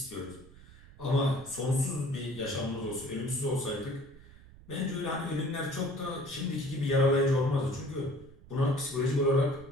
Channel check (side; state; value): right; noise; rumble, 21 dB below the sound